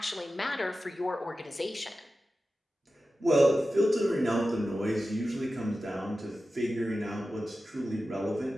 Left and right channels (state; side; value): normal; both; correlation 0.93